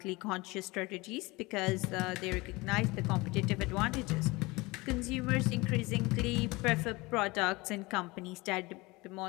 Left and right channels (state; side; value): quieter; right; 23.2 dB